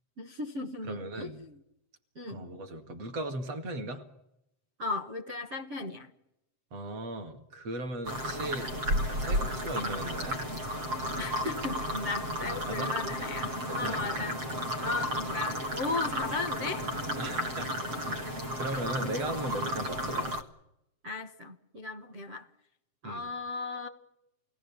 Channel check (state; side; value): late; left; 7.6 ms